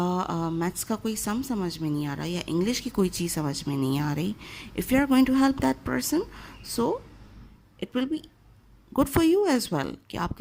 मैथ्स का कोई सम समझ में नहीं आ रहा, या इंग्लिश की कोई चीज़ समझ में नहीं आ रही, if you are going to help that person, so it will be good for you as well कि आप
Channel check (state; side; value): identical; both; correlation 1.00